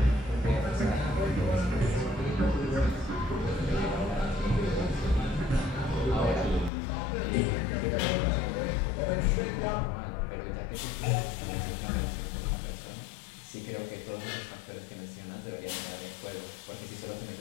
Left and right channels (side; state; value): right; drops out; at 6.7 s